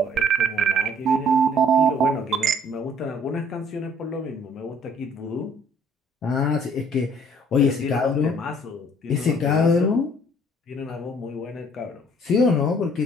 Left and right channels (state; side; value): normal; both; correlation 0.58